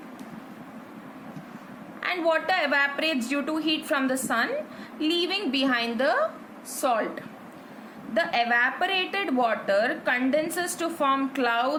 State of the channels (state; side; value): identical; both; correlation 1.00